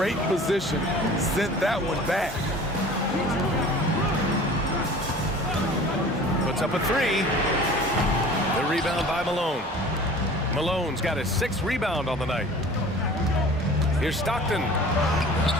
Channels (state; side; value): normal; both; correlation 0.44